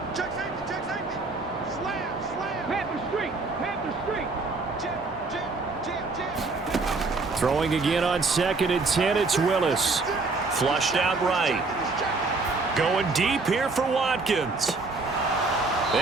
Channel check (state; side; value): quieter; left; 3.7 dB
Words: Throwing again on 2nd and 10, it's Willis. Flushed out right. Going deep here for Watkins.